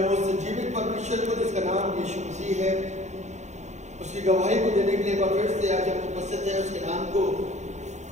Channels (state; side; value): late; left; 0.33 ms